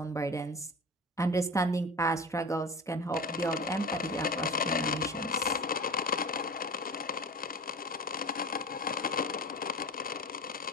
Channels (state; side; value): normal; both; correlation 0.32